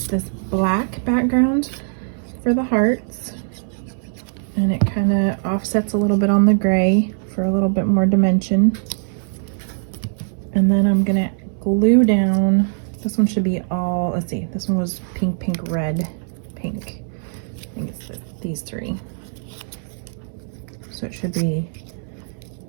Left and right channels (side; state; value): left; silent; 62 dB below the other